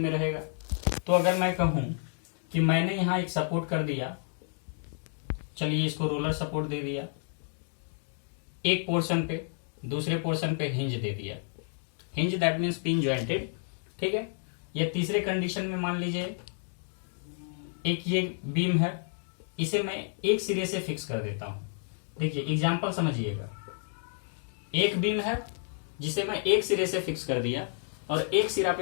रहेगा। तो अगर मैं कहूं कि मैंने यहां एक सपोर्ट कर दिया, चलिए इसको रोलर सपोर्ट दे दिया एक पोर्शन पे, दूसरे पोर्शन पे हिंज दे दिया, hinge that means pin jointed. ठीक है, या तीसरे कंडीशन में मान लीजिए एक ये बीम है, इसे मैं एक सिरे से फिक्स कर देता हूं। देखिए एग्जांपल समझिएगा, एक बीम है जिसे मैं एक सिरे से फिक्स कर दिया और एक सिरा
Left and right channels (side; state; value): right; silent; digital silence